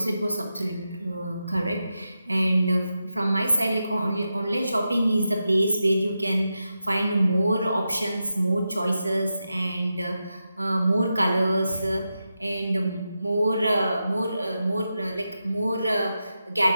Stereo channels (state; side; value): inverted; both; correlation -0.89